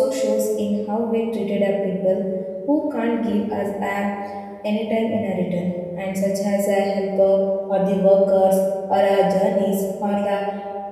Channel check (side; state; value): both; identical; correlation 1.00